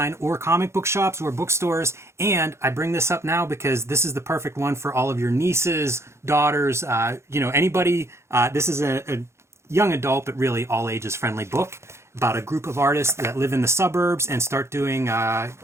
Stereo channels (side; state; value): left; late; 0.13 ms